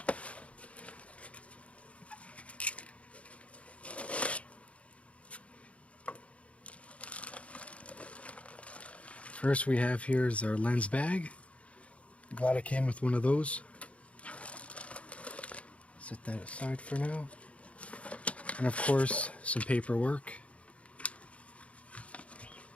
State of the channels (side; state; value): right; late; 0.063 ms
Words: First we have here is our lens bag. Glad it came with one of those. Set that aside for now. And of course, some paperwork.